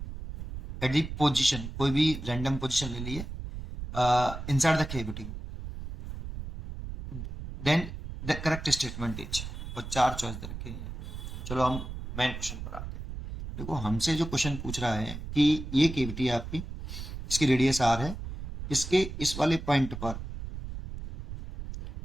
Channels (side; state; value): right; noise; rumble, 8 dB below the sound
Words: at the position, कोई भी रैंडम पोजिशन ले लिए inside the cavity, then the correct statement is, और चार चॉइस दे रखे हैं। चलो हम मेन क्वेश्चन पर आते हैं। देखो, हमसे जो क्वेश्चन पूछ रहा है कि ये केविटी है आपकी, इसकी रेडियस आर है, इसके इस वाले पॉइंट पर